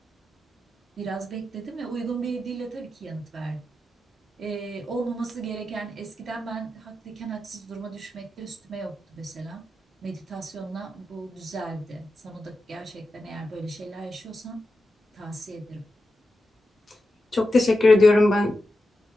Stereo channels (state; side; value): normal; both; correlation 0.90